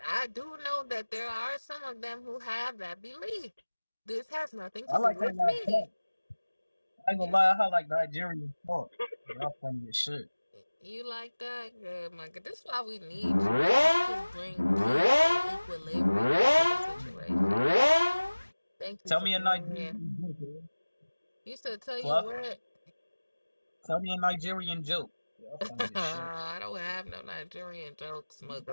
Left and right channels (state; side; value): inverted; both; correlation -1.00